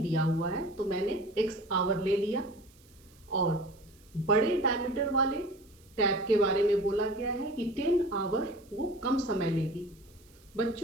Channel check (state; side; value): noise; right; hiss, 29 dB below the sound